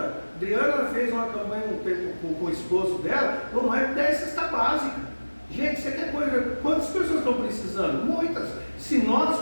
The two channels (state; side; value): inverted; both; correlation -1.00